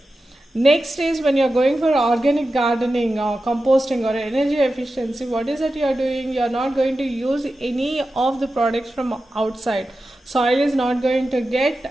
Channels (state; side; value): normal; both; correlation 0.92